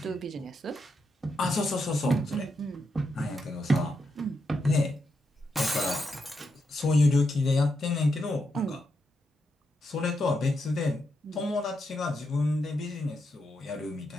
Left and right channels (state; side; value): normal; both; correlation 0.83